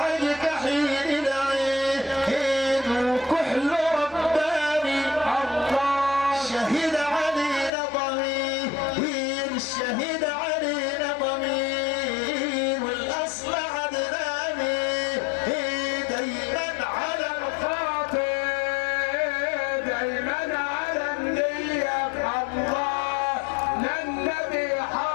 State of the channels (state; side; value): drops out; right; at 7.7 s